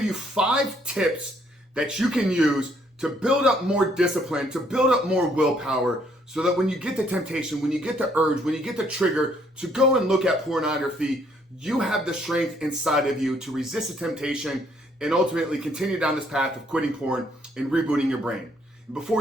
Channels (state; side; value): normal; both; correlation 0.68